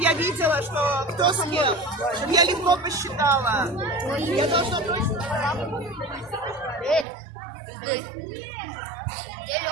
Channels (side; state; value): left; drops out; at 7.1 s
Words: я видела, что кто с кем. Чтобы я легко посчитала. Я должна точно... Я